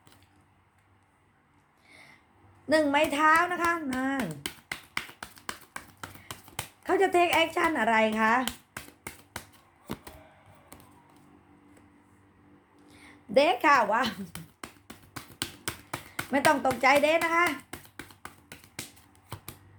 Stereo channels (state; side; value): identical; both; correlation 1.00